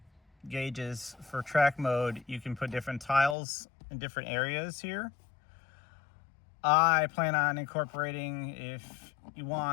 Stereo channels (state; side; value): drops out; right; at 3.4 s